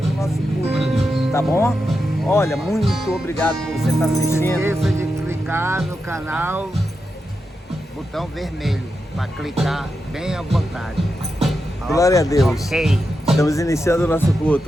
o nosso culto, tá bom? Olha, muito obrigado por você estar assistindo. Não esqueça de clicar no canal, botão vermelho, para clicar bem à vontade. Glória a Deus. Ok. Estamos iniciando o nosso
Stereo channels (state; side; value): normal; both; correlation 0.88